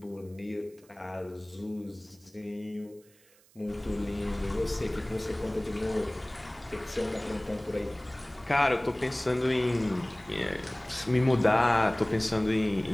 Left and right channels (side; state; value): right; noise; hiss, 29 dB below the sound